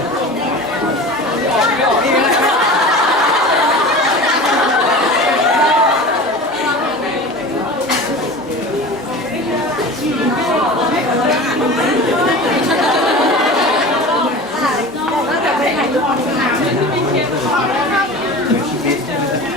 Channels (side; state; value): both; normal; correlation 0.34